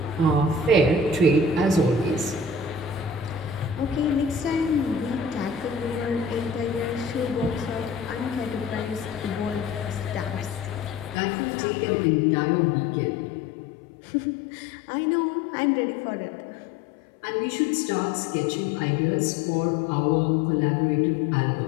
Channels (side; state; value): right; drops out; at 11.2 s